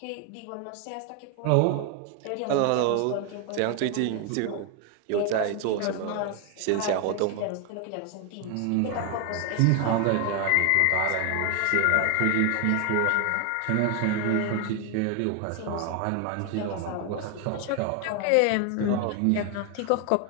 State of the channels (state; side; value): different; both; correlation 0.01